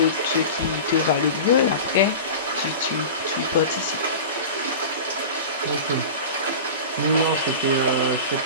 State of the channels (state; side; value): inverted; both; correlation -0.31